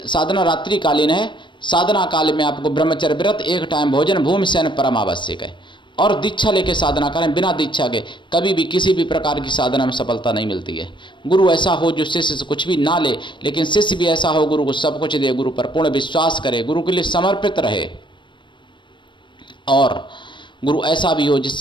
साधना रात्रिकालीन है। साधना काल में आपको ब्रह्मचर्य व्रत, एक टाइम भोजन, भूमि शयन परम आवश्यक है। और दीक्षा लेके साधना करें। बिना दीक्षा के कभी भी किसी भी प्रकार की साधना में सफलता नहीं मिलती है। गुरु ऐसा हो जो शिष्य से कुछ भी ना ले, लेकिन शिष्य भी ऐसा हो गुरु को सब कुछ दे, गुरु पर पूर्ण विश्वास करे, गुरु के लिए समर्पित रहे। और गुरु ऐसा भी हो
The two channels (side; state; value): right; late; 0.23 ms